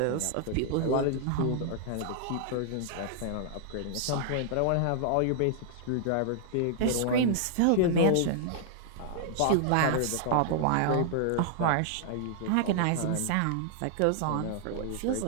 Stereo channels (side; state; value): both; different; correlation -0.01